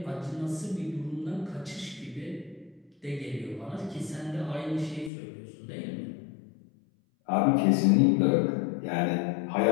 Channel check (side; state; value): right; drops out; at 5.1 s